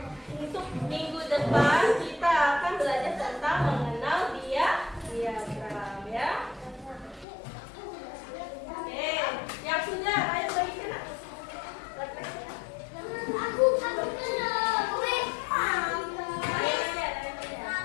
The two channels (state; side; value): drops out; right; at 7.2 s